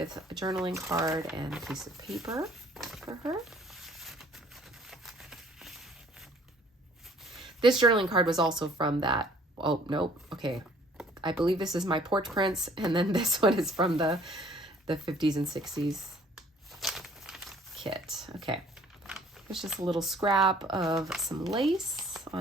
a journaling card and a piece of paper for her. This journaling card was also from that. Oh, nope. Okay. I believe this is my porch prints, and then this one is from the 50s and 60s kit. Okay. There's just a little scrap of some lace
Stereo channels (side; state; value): both; normal; correlation 0.57